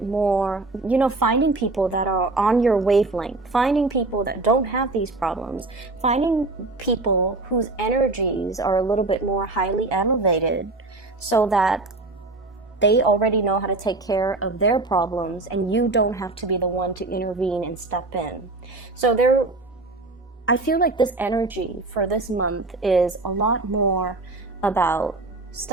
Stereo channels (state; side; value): quieter; left; 3.2 dB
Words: more, you know, finding people that are on your wavelength, finding people that don't have these problems, finding people whose energies are a little bit more highly elevated, so that they already know how to take care of their problems and you don't have to be the one to intervene and step in. So I feel like this energy for this month is a lot more about